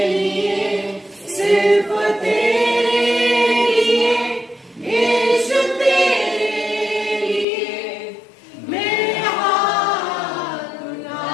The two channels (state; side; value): drops out; right; at 7.5 s